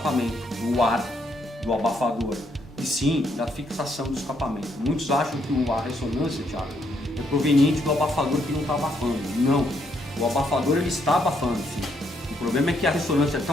do ar, do abafador, e sim da fixação do escapamento. Muitos acham que a ressonância, Thiago, é proveniente do abafador que não está abafando. Não, o abafador ele está abafando, sim. O problema é que a ressonância é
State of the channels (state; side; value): normal; both; correlation 0.73